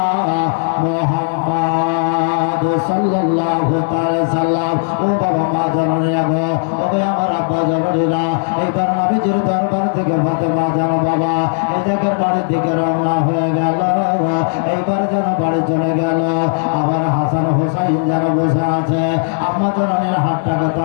মুহাম্মদ সাল্লাল্লাহু তাআলা সাল্লাম ও বাবা মা জননীরা গো ওরে আমার আব্বা জননীরা এইবার নবীজির দরবার থেকে ফাতেমা যেন বাবা এই জায়গার বাড়ির দিকে রওনা হয়ে গেল এইবার যেন বাড়ি চলে গেল আমার হাসান হোসাইন যেন বসে আছে আম্মা জননীর হাতটাকে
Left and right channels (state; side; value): silent; right; 55 dB below the other